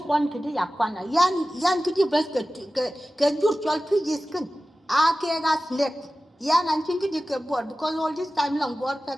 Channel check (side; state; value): both; normal; correlation 0.95